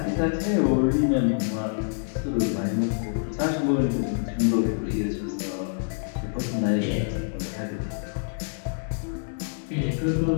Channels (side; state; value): right; silent; digital silence